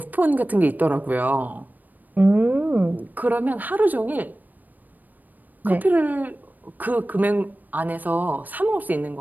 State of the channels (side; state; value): left; late; 0.085 ms